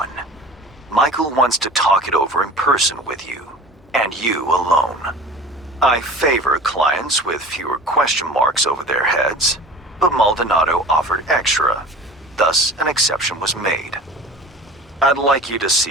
Michael wants to talk it over in person with you, and you alone. I favor clients with fewer question marks over their heads, but Maldonado offered extra, thus an exception was made. I'd like you to see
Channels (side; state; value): both; normal; correlation 0.40